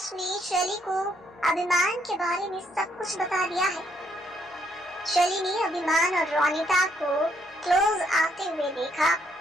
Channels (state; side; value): normal; both; correlation 0.72